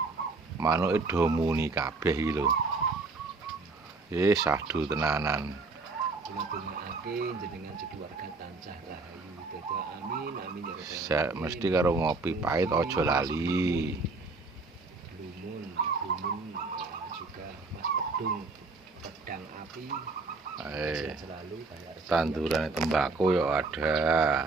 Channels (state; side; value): quieter; left; 3.8 dB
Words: Manuke do muni kabeh iki lho. Sahdu tenanan. Dongakake jenengan keluarga tansah rahayu. Dadi amin amin ya rabbal Sek mesti karo ngopi pahit aja lali. Blumun juga Mas Pedung pedang api. Selalu Tanduran tembakau ya ada.